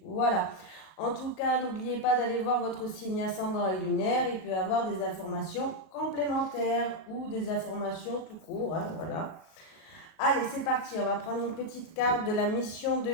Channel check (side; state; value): right; late; 37 ms